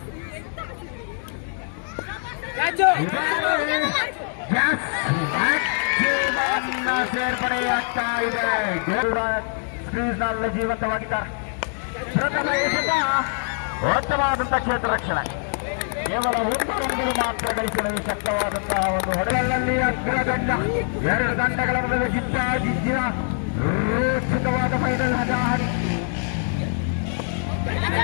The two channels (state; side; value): silent; right; 57 dB below the other